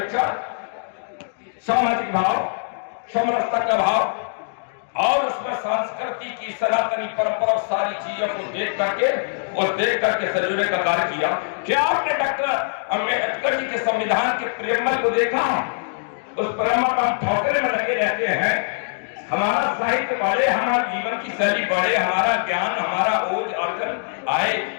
सामाजिक भाव, समरसता का भाव और उसमें संस्कृति की सनातनी परंपरा, सारी चीजों को देख करके सजोने का कार्य किया। क्या आपने डॉक्टर अम्बेडकर जी के संविधान के प्रेमल को देखा? उस प्रेमल का हम ठोकरे में लगे रहते हैं। हमारा साहित्य बढ़े, हमारा जीवन की शैली बढ़े, हमारा ज्ञान, हमारा ओज अर्जन आए,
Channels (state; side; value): silent; right; digital silence